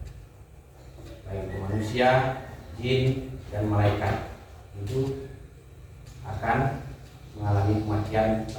Baik itu manusia, jin, dan malaikat itu akan mengalami kematian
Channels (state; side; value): identical; both; correlation 1.00